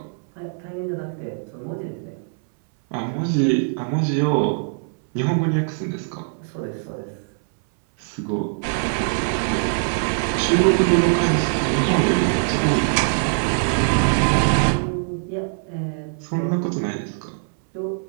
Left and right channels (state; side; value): silent; left; 64 dB below the other